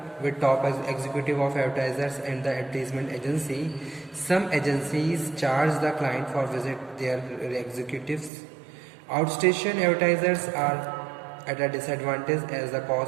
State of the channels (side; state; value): left; drops out; at 8.3 s